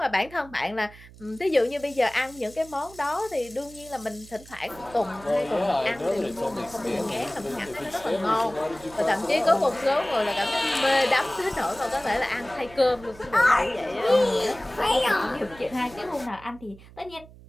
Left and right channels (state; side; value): noise; right; hum, 21 dB below the sound